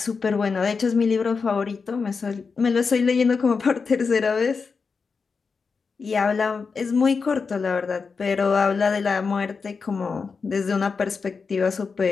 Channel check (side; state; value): right; quieter; 5.0 dB